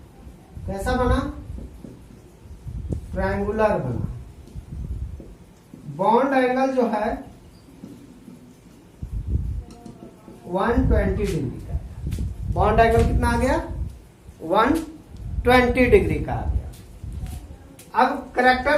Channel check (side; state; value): both; identical; correlation 1.00